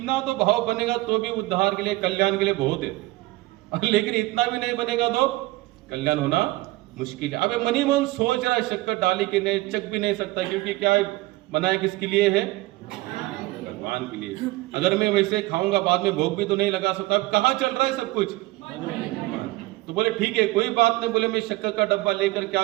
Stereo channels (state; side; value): quieter; left; 19.4 dB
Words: तो भाव बनेगा तो भी उद्धार के लिए, कल्याण के लिए बहुत है, लेकिन इतना भी नहीं बनेगा तो कल्याण होना मुश्किल है। अब मनी मन सोच रहा है शक्कर डाली के नहीं, चख भी नहीं सकता, क्योंकि क्या बनाए किसके लिए है, भगवान के लिए। अगर मैं वैसे खाऊंगा बाद में भोग भी तो नहीं लगा सकता। अब कहाँ चल रहा है सब कुछ, तो बोले ठीक है कोई बात नहीं। बोले मैं शक्कर का डब्बा लेकर क्या